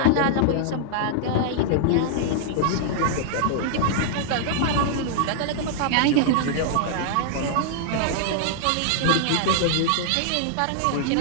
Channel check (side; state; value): both; different; correlation -0.01